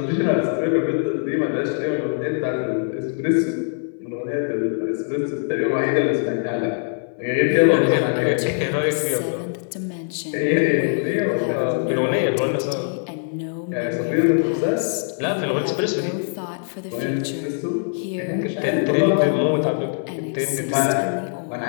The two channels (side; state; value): right; silent; 64 dB below the other